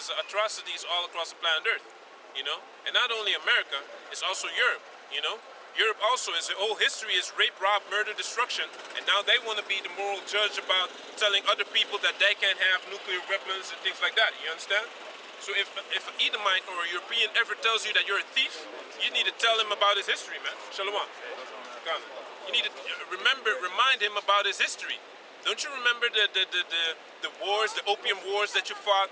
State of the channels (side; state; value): both; identical; correlation 1.00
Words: atrocities all across the planet Earth, you know? And not only America, it's also Europe, you know? Europe also, its whole history is rape, rob, murder, destruction, and now they want to be the moral judge about telling other people that they can't have nuclear weapons and things like that, you understand? So if an Edomite or a European ever tells you that you're a thief, you need to tell him about his history, man. Shalom. You need to remind him about his history. Don't you remember the wars, the opium wars that you